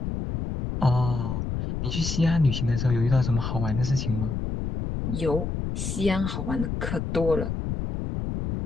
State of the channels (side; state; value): left; noise; rumble, 3 dB below the sound